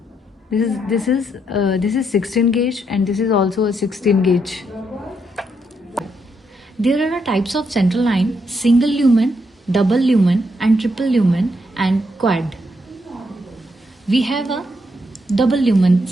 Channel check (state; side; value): normal; both; correlation 0.78